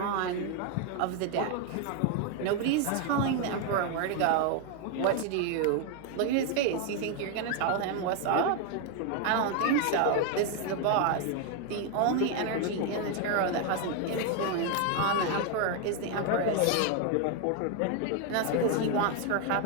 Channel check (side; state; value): both; different; correlation 0.01